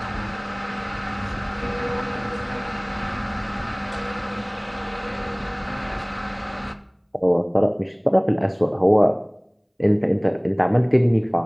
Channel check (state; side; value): identical; both; correlation 1.00